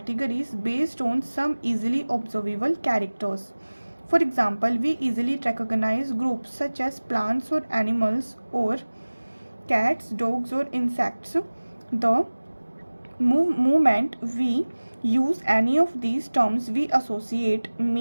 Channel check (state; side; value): inverted; both; correlation -1.00